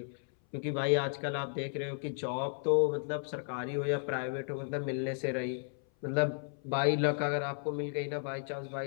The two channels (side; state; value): right; silent; 55 dB below the other